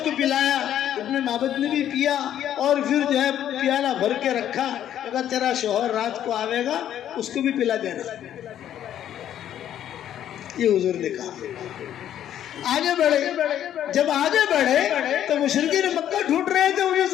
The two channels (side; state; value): right; quieter; 10.8 dB